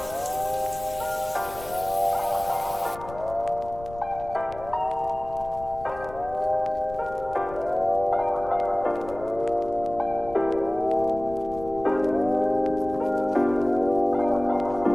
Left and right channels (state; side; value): noise; left; rumble, 16 dB below the sound